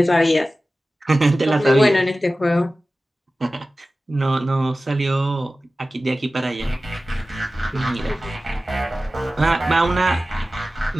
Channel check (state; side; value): normal; both; correlation 0.96